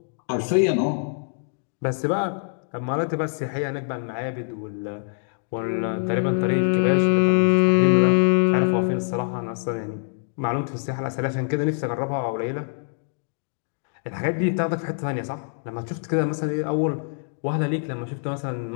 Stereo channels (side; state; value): right; silent; digital silence